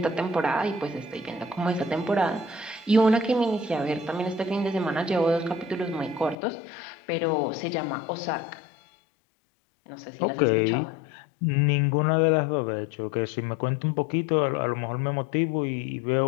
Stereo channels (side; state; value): right; drops out; at 6.4 s